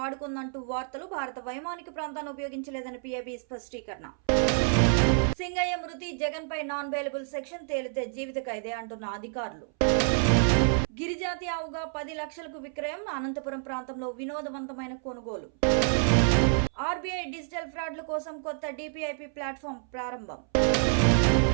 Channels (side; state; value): left; silent; 59 dB below the other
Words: వార్తలు. భారత వైమానిక ప్రాంతాన్ని ఉపయోగించలేదని పిఐబి స్పష్టీకరణ. సింగయ్య మృతి, జగన్పై నాన్ బెయిలబుల్ సెక్షన్ తేలితే జీవిత ఖైదే అంటున్న అధికారులు. గిరిజాతి ఆవుగా 10 లక్షలకు విక్రయం. అనంతపురం ప్రాంతంలో వినోదవంతమైన కొనుగోలు. ఆర్బీఐ డిజిటల్ ఫ్రాడ్ల కోసం కొత్త డిపిఐపి ప్లాట్ఫామ్ ప్రారంభం.